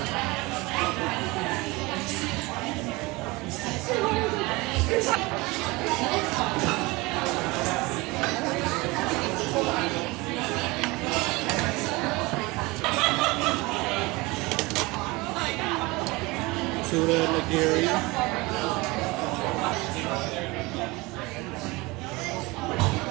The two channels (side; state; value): left; quieter; 23.3 dB